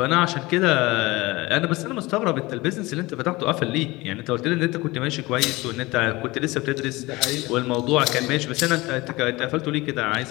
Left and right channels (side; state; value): right; quieter; 21.5 dB